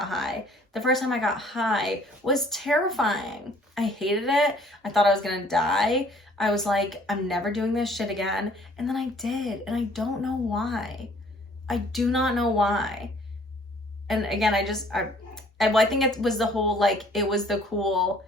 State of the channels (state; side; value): normal; both; correlation 0.57